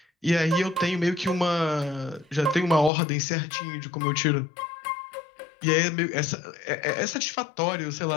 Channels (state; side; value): drops out; right; at 2.9 s